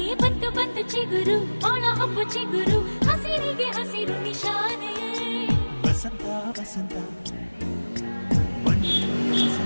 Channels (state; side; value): inverted; both; correlation -1.00